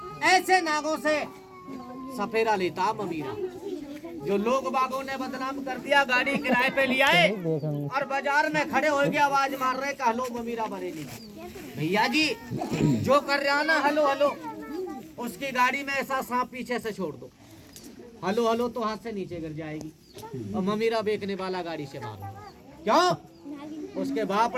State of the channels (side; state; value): both; identical; correlation 1.00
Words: ऐसे नागों से सफेदा लेता ममीरा, जो लोग बागों ने बदनाम कर दिया। गाड़ी किराए पे लिया है और बाजार में खड़े हो गए, आवाज मार रहे कि हलो ममीरा बरेली। भैया जी जो कर रहा ना हलो हलो, उसकी गाड़ी में ऐसा सांप पीछे से छोड़ दो, हलो हलो तो हाथ से नीचे गिर जाएगी और ममीरा बेचने वाला गाड़ी से मारो। क्यों? उसके बाप